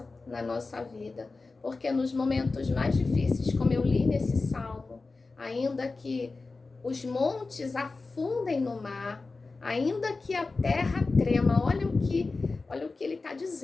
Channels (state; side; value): quieter; right; 3.8 dB